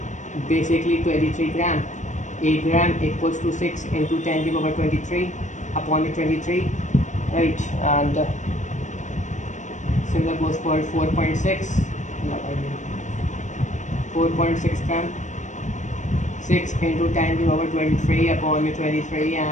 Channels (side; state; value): right; late; 0.35 ms